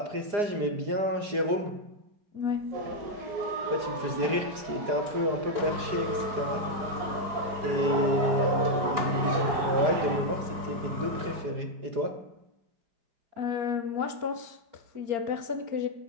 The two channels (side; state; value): left; late; 4.9 ms